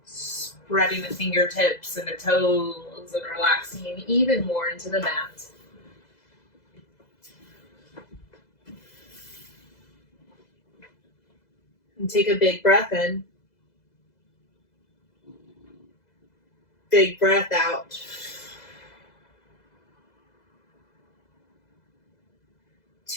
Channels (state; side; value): late; right; 2.0 ms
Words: spreading the fingertips and the toes and relaxing even more into the mat. And take a big breath in. Big breath out.